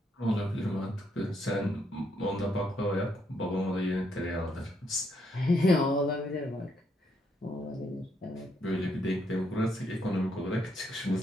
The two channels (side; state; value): both; normal; correlation 0.75